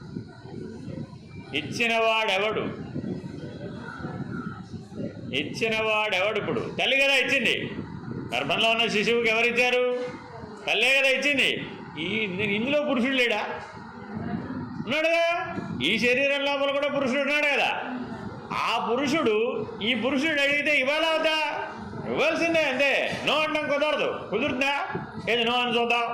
ఇచ్చినవాడెవడు? ఇచ్చినవాడెవడు? ఇప్పుడు తల్లి కదా ఇచ్చింది. గర్భంలో ఉన్న శిశువుకి ఎవరిచ్చారు? తల్లే కదా ఇచ్చింది. ఇందులో పురుషుడు లేడా? ఉన్నాడుగా. ఈ శరీరం లోపల కూడా పురుషుడు ఉన్నాడు కదా. ఆ పురుషుడు ఈ పురుషుడు అడిగితే ఇవ్వాలా అవుతా? ఇవ్వాల్సిందే, అంతే. నో అంటాం కుదరదు. కుదురుతుందా? ఏది నో అని చూద్దాం.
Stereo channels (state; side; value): identical; both; correlation 1.00